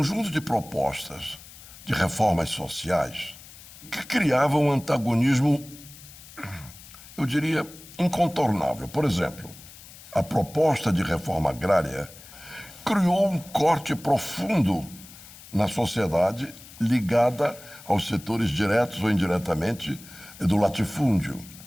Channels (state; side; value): noise; left; hiss, 19 dB below the sound